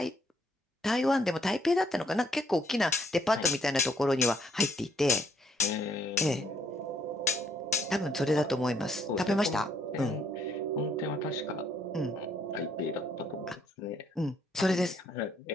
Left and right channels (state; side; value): normal; both; correlation 0.68